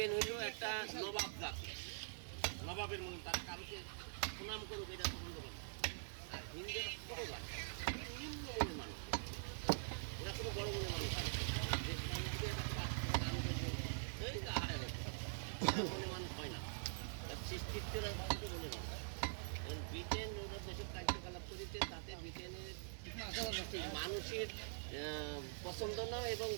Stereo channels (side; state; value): left; silent; digital silence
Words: হইল একটা নবাব জাতি, নবাবের মনে তারা কারোকে সুনাম করুক এটা পছন্দ করে। আর হিন্দুরা ছোট জাতি, নিম্ন মনের মানুষ, ওরা কোনো বড় মনের মানুষ মনে মানুষ হয় না, সৃষ্টিত্বের মনে মানুষ। ব্রিটেন ওরা যেসব কার্যকলাপ করেছে তাতে ব্রিটেনের মানুষের পছন্দ না এবং